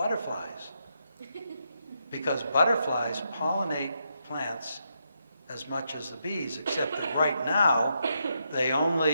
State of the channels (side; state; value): both; inverted; correlation -0.81